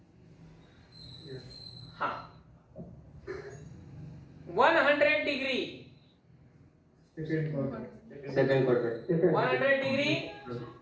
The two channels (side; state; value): both; identical; correlation 1.00